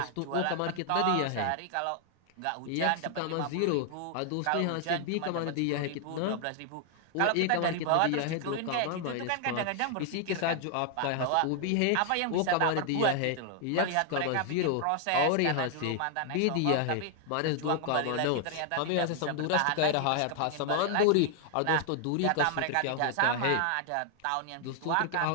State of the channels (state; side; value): different; both; correlation 0.00